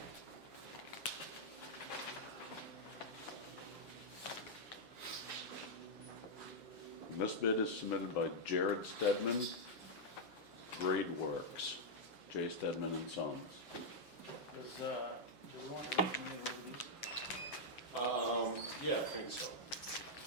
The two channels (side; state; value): right; late; 8.0 ms